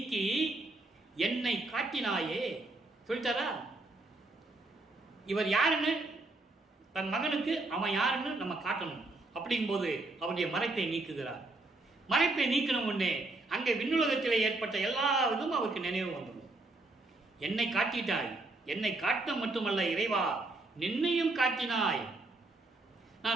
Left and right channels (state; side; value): quieter; left; 3.0 dB